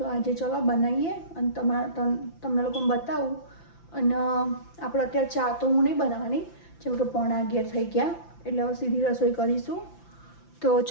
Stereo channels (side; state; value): right; late; 5.9 ms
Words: આજે ચલો બનાવીએ અને તમને લોકોને બતાવું. અને આપણે અત્યારે ચા તો હું નહીં બનાવવાની, જેમ કે 11:15 થઈ ગયા, એટલે હવે સીધી રસોઈ કરીશું. તો